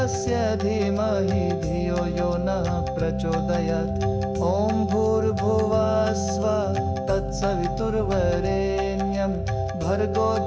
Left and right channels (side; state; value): both; identical; correlation 1.00